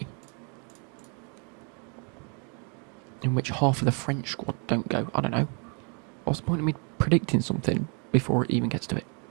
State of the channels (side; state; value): left; quieter; 36.7 dB